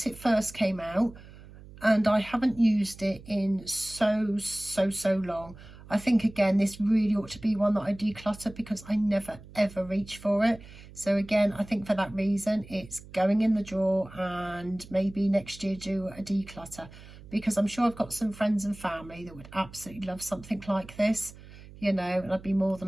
it first came out, and I haven't used it in so long. I think again this really ought to be one that I declutter, because I never ever reach for it. So again, I think for that reason it's going in the drawer, and maybe next year do a declutter, because I'm sure I've got some friends and family that would absolutely love something like this, you know, and I'd be more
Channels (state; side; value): noise; right; hum, 18 dB below the sound